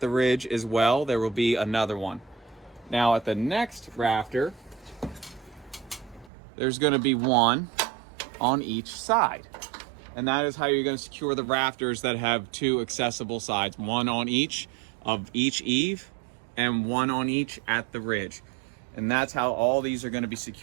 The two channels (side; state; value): left; drops out; at 6.3 s